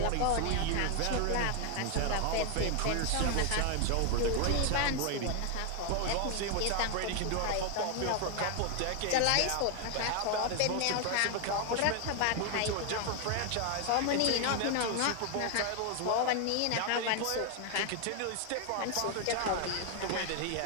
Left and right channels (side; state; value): both; different; correlation 0.01